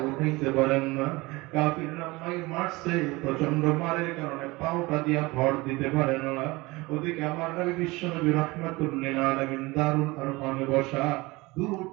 উঠাইতে পারেন না, কাফিররা মারছে, প্রচন্ড মারের কারণে পাওটা দিয়া ভর দিতে পারেন না। ওদিকে আমার নবী বিশ্বনবী রাহমাতুল লিল আলামিন দারুল আরকামে বসা, দূর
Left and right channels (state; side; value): quieter; left; 22.5 dB